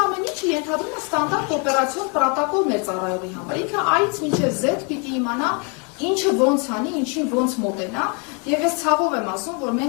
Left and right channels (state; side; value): quieter; right; 35.5 dB